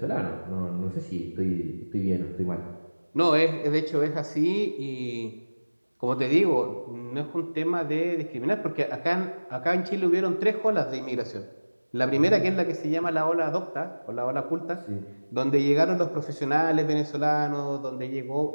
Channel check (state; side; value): inverted; both; correlation -1.00